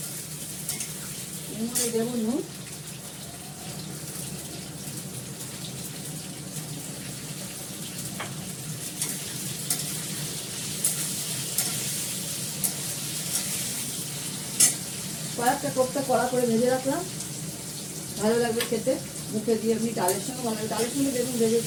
এর মধ্যে দেবো নুন, কয়েকটা কোপ্তা কড়া করে ভেজে রাখলাম, ভালো লাগবে খেতে, মুখে দিয়ে এমনি ডালের সঙ্গে ভালো লাগে। ডালের সঙ্গে দেখুন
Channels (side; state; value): both; identical; correlation 1.00